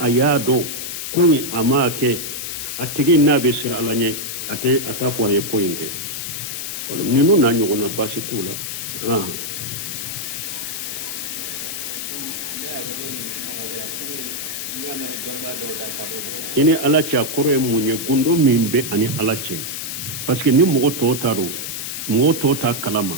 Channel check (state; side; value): noise; left; hiss, 5 dB below the sound